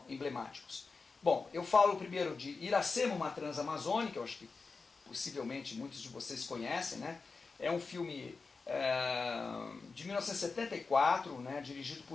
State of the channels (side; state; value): right; quieter; 4.4 dB